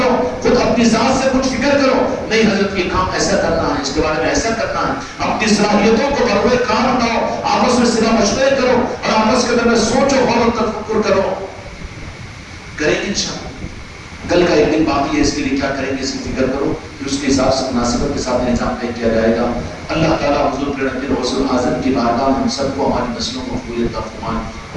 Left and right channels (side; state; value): both; identical; correlation 1.00